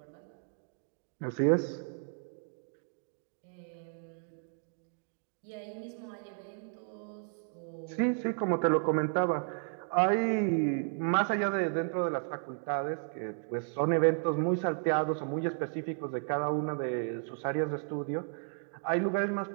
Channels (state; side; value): silent; left; 56 dB below the other